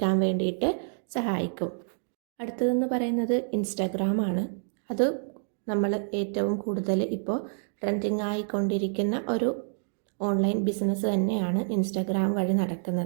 വേണ്ടിയിട്ട് സഹായിക്കും. അടുത്തതെന്ന് പറയുന്നത് ഇൻസ്റ്റാഗ്രാമാണ്. അത് നമ്മൾ ഏറ്റവും കൂടുതൽ ഇപ്പോൾ ട്രെൻഡിങ് ആയിക്കൊണ്ടിരിക്കുന്ന ഒരു ഓൺലൈൻ ബിസിനസ് തന്നെയാണ് ഇൻസ്റ്റാഗ്രാം വഴി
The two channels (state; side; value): silent; left; digital silence